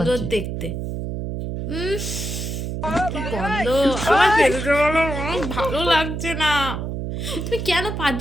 মারছি? দেখতে। কি গন্ধ আমার পেটে বলো, ভালো লাগছে না। তুমি কেন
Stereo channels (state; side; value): noise; right; hum, 4 dB below the sound